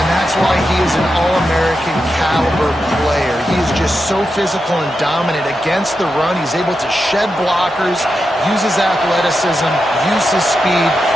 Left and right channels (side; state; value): both; normal; correlation 0.88